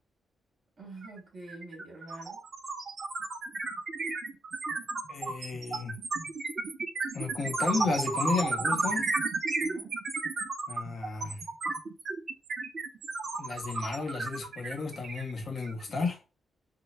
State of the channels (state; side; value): normal; both; correlation 0.79